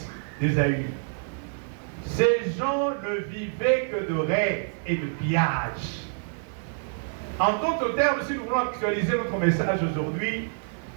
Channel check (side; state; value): left; silent; 60 dB below the other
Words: d'Ésaü. Ces gens ne vivaient que de rêves et de pillages. En d'autres termes, si nous voulons actualiser notre message aujourd'hui,